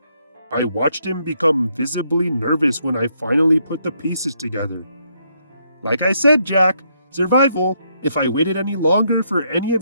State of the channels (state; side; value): inverted; both; correlation -0.74